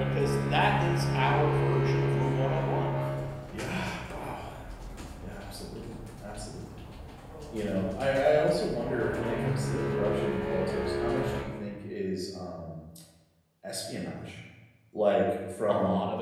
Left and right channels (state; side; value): identical; both; correlation 1.00